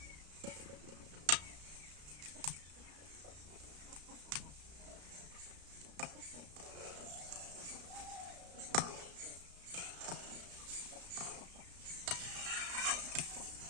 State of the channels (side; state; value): left; late; 34 ms